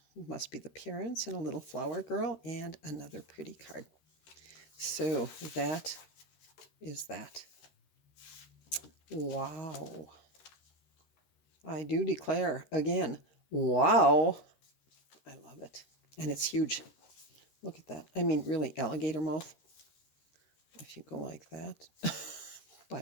Must be the parents and a little flower girl and another pretty card. So that is that. Wow. I do declare again, wow. I love it. And it's huge. Look at that. I mean, really, alligator mouth. If you go like that.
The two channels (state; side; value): late; right; 13 ms